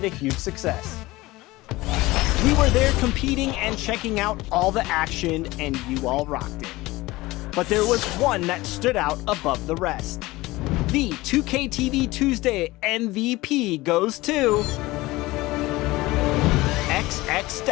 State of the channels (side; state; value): right; quieter; 19.8 dB